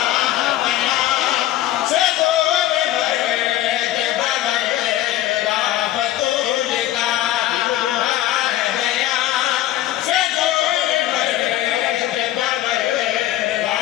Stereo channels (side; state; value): right; quieter; 13.8 dB